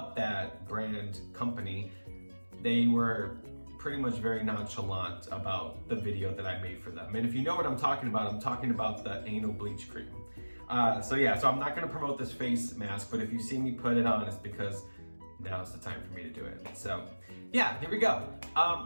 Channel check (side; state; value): both; inverted; correlation -1.00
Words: that brand company, they were pretty much very nonchalant about the video that I made for them. And if you know what I'm talking about the anal bleach cream. So I'm not gonna promote this face mask, but if you see me put it on, it's because now's the time for me to do it. So yeah, here we go.